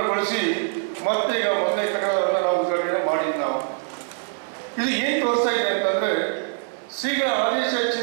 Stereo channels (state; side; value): silent; left; digital silence